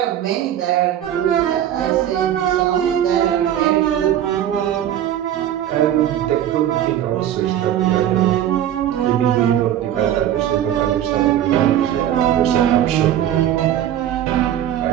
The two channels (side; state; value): left; quieter; 11.2 dB